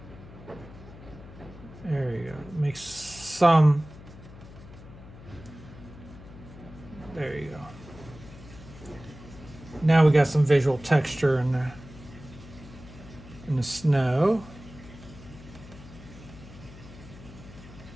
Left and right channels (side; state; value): left; noise; hum, 17 dB below the sound